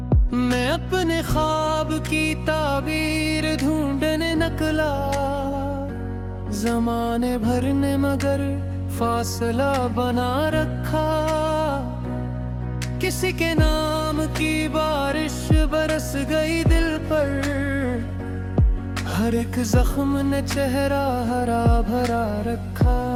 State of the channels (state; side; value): identical; both; correlation 1.00